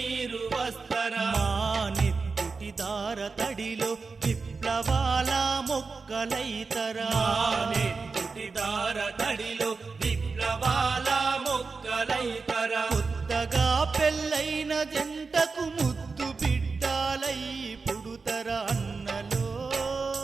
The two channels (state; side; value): quieter; left; 4.5 dB